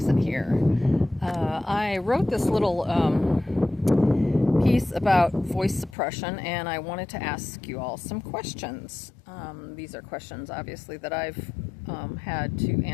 here. I wrote this little piece about voice suppression, and I wanted to ask you all some questions. These are questions, obviously, that I've had to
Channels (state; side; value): drops out; right; at 6.0 s